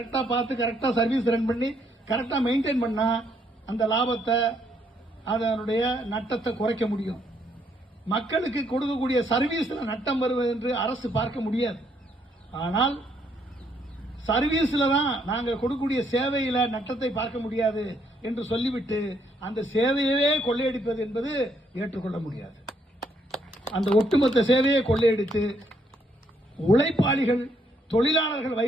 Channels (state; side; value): normal; both; correlation 0.71